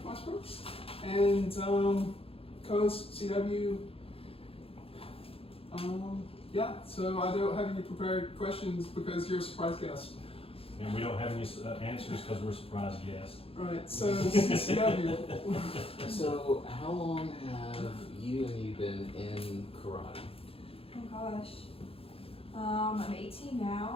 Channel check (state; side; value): late; right; 0.27 ms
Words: Westbrooks, and co-host CW. Yeah, so I don't have any prepared questions because you're a surprise guest. And we don't have any answers because we're surprised guests. Right, so CW. So, how long have you been in karate? Oh gosh. I'm 18